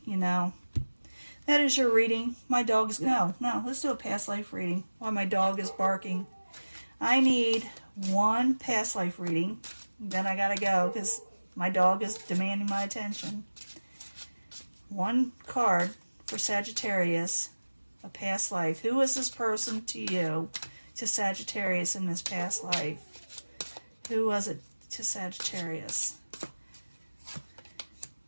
you know. That is your reading. My dog's, no, let's do a past life reading while my dog is barking. I need one past life reading, then I gotta go because my dog is demanding my attention. One card for Sagittarius, a past life. Who is this person to you, to Sagittarius in this past life? Who was it to Sagittarius?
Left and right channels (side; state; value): both; inverted; correlation -1.00